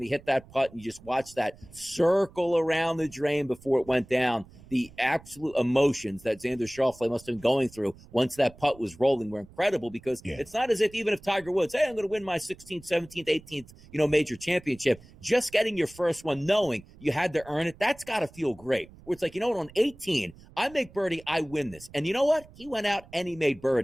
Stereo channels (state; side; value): noise; right; rumble, 22 dB below the sound